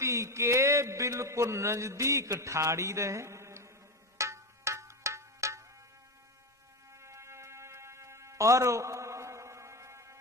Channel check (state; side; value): normal; both; correlation 0.17